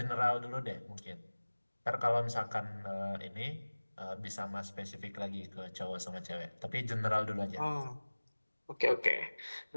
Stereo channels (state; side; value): inverted; both; correlation -1.00